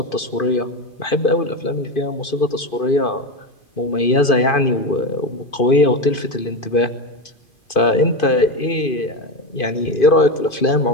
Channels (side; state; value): right; late; 2.5 ms